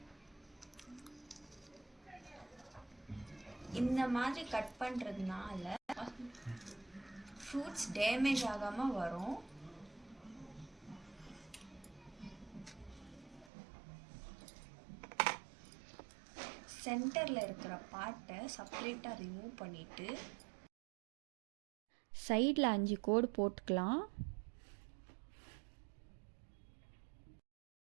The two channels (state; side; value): drops out; left; at 13.5 s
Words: இந்த மாதிரி கட் பண்ணுறதுனால ஃப்ரூட்ஸ் டேமேஜ் ஆகாமல் வரும். சென்டரில் இருக்கிற பார்ட்டை செப்பரேட்டாக ரிமூவ் பண்ணிவிட்டு சைடில் 5 கோடு போட்டுக்கலாம்.